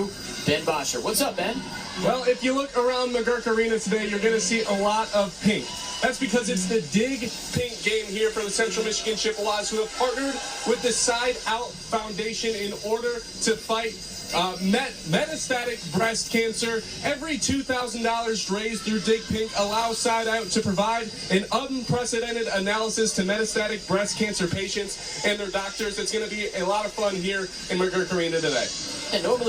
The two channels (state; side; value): identical; both; correlation 1.00